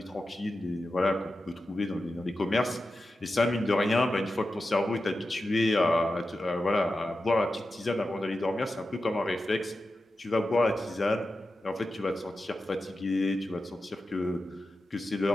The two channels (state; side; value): normal; both; correlation 0.92